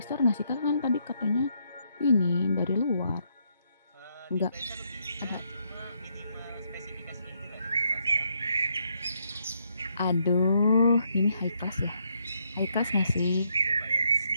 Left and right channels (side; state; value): both; inverted; correlation -0.75